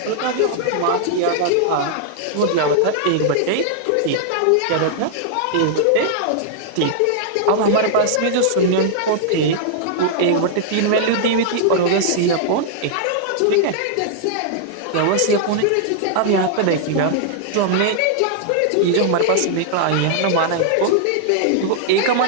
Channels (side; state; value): both; different; correlation -0.01